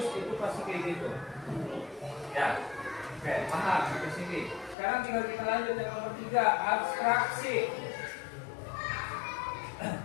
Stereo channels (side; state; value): right; drops out; at 4.8 s